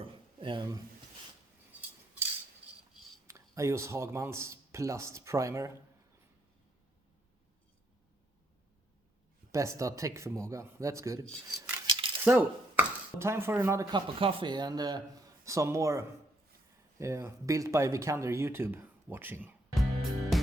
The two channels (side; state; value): both; normal; correlation 0.73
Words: I use Hagman's Plast Primer. Bästa täckförmåga, that's good. So, time for another cup of coffee and some more built by Vikander YouTube watching.